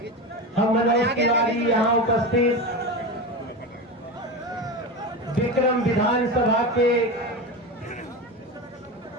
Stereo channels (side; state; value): both; normal; correlation 0.22